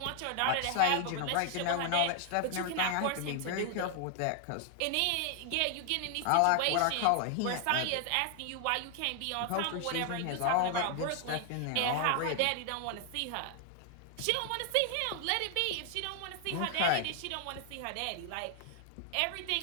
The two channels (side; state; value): both; different; correlation 0.00